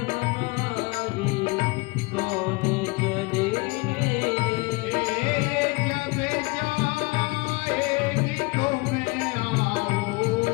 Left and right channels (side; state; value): right; quieter; 25.8 dB